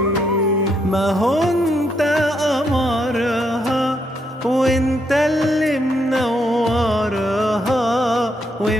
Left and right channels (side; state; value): both; normal; correlation 0.76